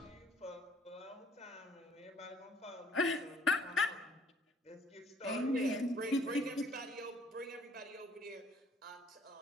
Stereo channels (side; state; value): both; normal; correlation 0.60